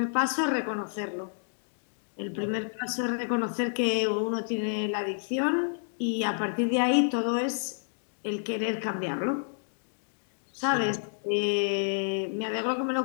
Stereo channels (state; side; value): silent; right; digital silence